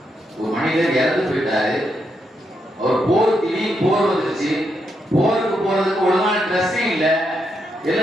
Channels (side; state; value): both; normal; correlation 0.81